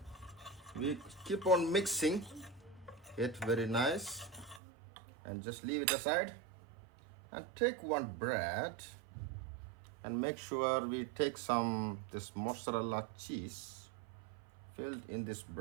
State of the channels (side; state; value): left; drops out; at 4.6 s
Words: we keep on mixing it very nice. And just leave it aside. And take 1 bread. And make sure we take this mozzarella cheese filled in this